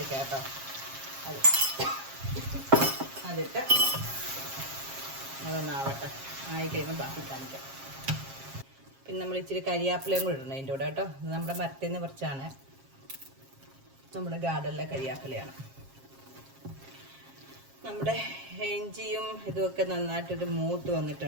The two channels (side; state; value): left; late; 7.4 ms